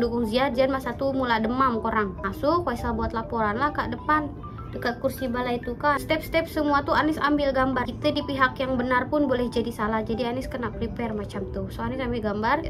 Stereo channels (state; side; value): identical; both; correlation 1.00